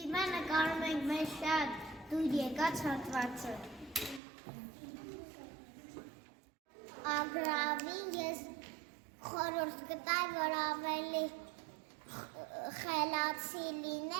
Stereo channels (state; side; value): drops out; left; at 4.2 s